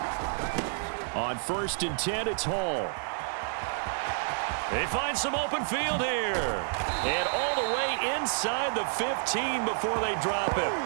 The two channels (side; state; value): left; silent; 58 dB below the other